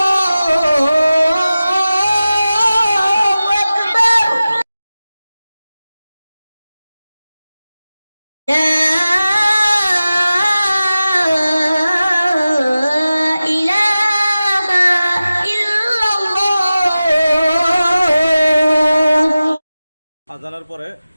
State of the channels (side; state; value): both; inverted; correlation -0.95